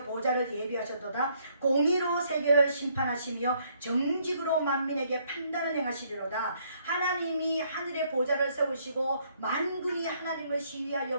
보좌를 예비하셨도다. 공의로 세계를 심판하시며 정직으로 만민에게 판단을 행하시리로다. 하나님이 하늘의 보좌를 세우시고 만군이 하나님을 시위하여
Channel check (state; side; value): inverted; both; correlation -0.68